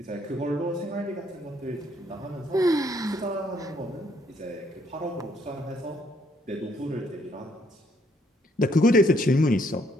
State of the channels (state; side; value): normal; both; correlation 0.68